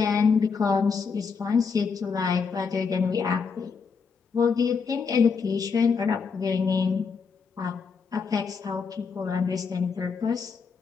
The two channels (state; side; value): quieter; right; 5.5 dB